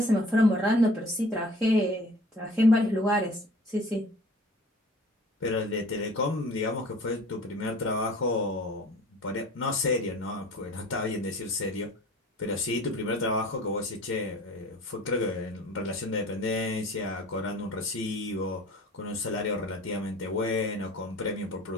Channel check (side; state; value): both; normal; correlation 0.45